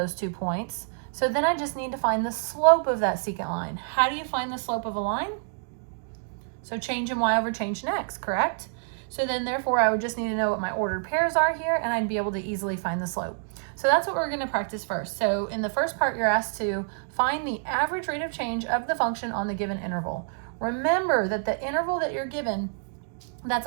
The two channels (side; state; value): left; silent; digital silence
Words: 2 points. So then I just need to find the slope of that secant line. How do you find the slope of a line? So change in y over change in x, correct? So then therefore I would just need to know what my ordered pairs are here and I'd be able to easily find the slope. So that's what we're going to practice first. So in the first part you're asked to find the average rate of change of the function on the given interval. Remember that the interval that you're given,